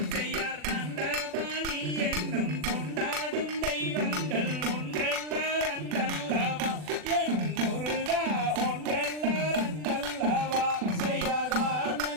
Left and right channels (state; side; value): late; left; 40 ms